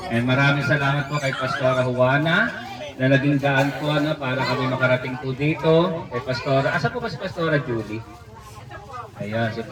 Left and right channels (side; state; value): both; identical; correlation 1.00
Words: And maraming salamat po kay Pastora Juana na naging daan po para kami makarating po dito. Kay Pastora, asa po ba si Pastora Julie? Ayan, si